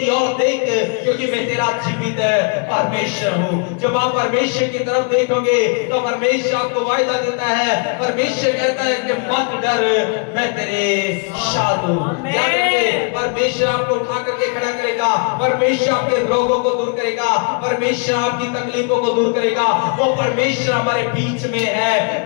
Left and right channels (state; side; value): quieter; right; 37.1 dB